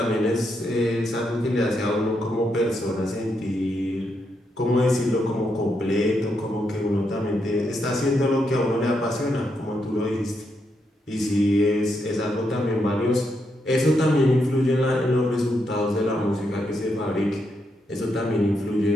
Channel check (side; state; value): both; normal; correlation 0.81